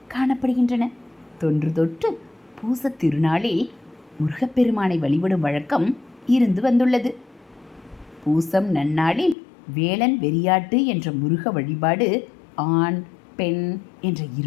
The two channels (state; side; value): drops out; right; at 9.3 s